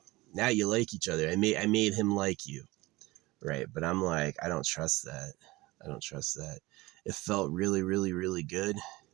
now you like each other. I made him like you, right? But I'm like, I don't trust that. It felt really, really, really good.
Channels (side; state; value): left; quieter; 20.7 dB